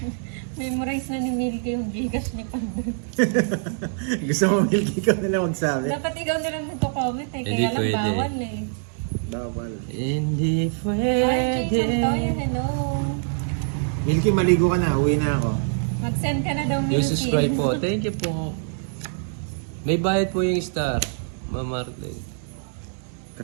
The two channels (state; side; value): silent; left; digital silence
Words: Memorize na ni Milky yung Gcash ni Pandoy. Gusto mo Milky ka nila magsabi? Dapat ikaw na lang magko-comment eh. Hindi Kaya lang pwede. bawal eh. Bawal. Hindi Ay, pwede. Pandoy, hello. Milky, maligo ka na. Uwi na ako. Mag-send ka na daw Milky. Yung subscribe po. Thank you po. May bayad po yung star. Ma'am Marlene.